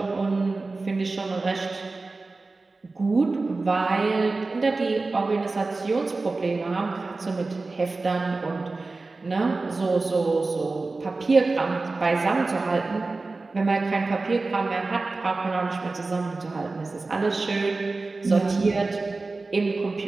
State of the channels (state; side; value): quieter; left; 3.6 dB